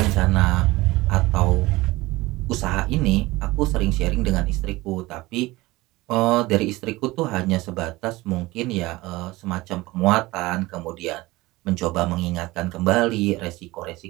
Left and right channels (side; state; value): left; quieter; 20.1 dB